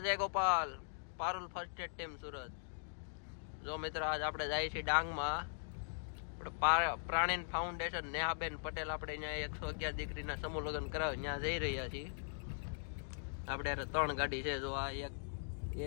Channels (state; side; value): silent; right; digital silence